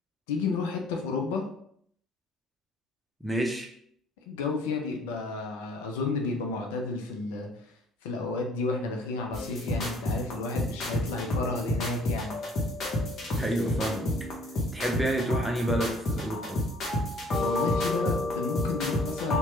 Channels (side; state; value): both; normal; correlation 0.56